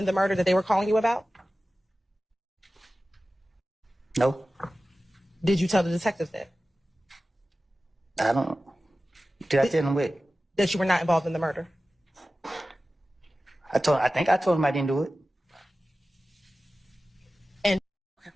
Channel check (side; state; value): both; normal; correlation 0.95